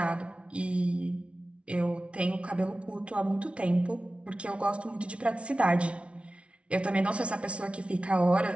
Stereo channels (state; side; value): late; left; 0.061 ms